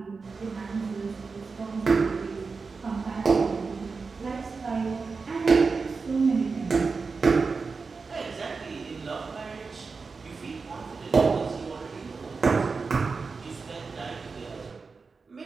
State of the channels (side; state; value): left; quieter; 4.6 dB